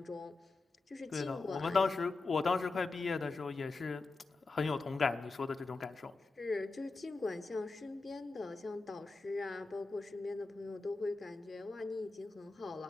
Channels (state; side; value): quieter; right; 3.7 dB